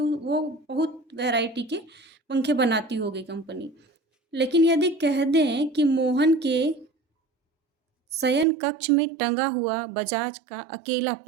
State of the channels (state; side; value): drops out; left; at 8.5 s